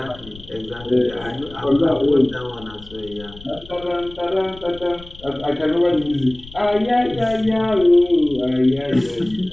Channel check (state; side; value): noise; left; rumble, 19 dB below the sound